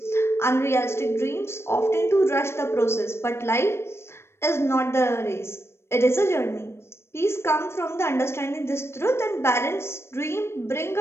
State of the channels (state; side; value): late; right; 0.12 ms